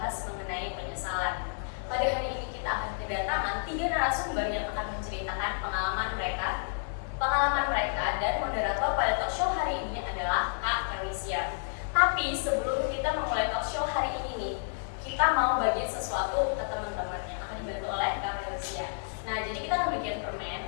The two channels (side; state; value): right; silent; digital silence